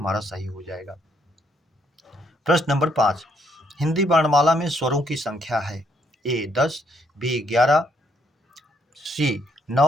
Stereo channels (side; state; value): both; normal; correlation 0.72